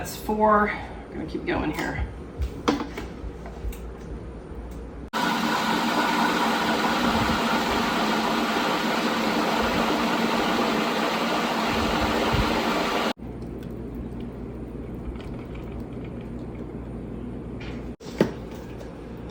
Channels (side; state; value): both; identical; correlation 1.00